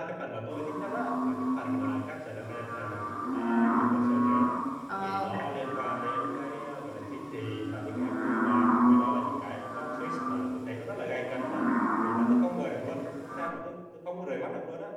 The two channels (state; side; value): identical; both; correlation 1.00